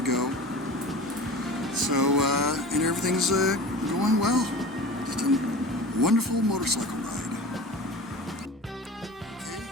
go. So, and everything's going well. Just a wonderful motorcycle ride. Okay,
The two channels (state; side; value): normal; both; correlation 0.36